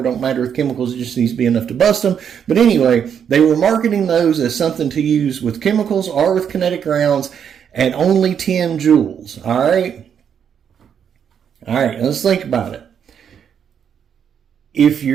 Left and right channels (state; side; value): quieter; left; 8.0 dB